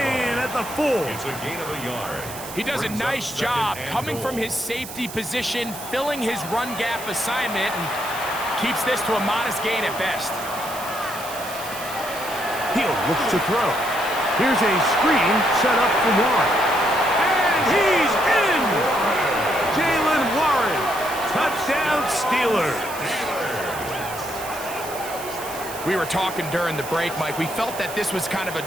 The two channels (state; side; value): noise; right; hiss, 12 dB below the sound